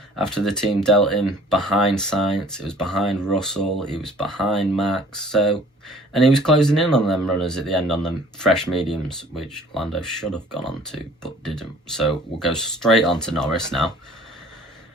after the team dealt him behind Sainz. It was behind Russell. He was behind Max. So, and he was closing in on them runners at the end on them fresh mediums, which Lando should have gone on to, but didn't. So we'll go straight on to Norris now.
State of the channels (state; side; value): normal; both; correlation 0.51